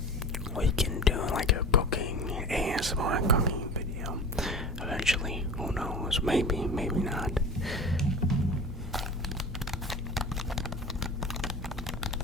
we can do like a cooking ASMR cooking video eventually. Who knows? Maybe not.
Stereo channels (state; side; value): normal; both; correlation 0.35